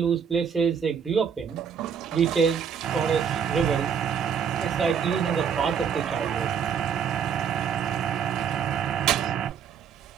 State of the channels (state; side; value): quieter; left; 7.3 dB